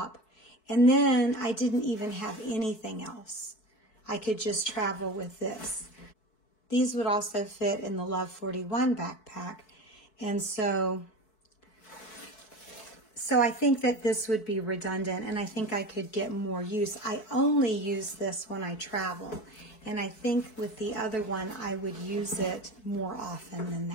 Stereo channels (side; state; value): right; late; 4.6 ms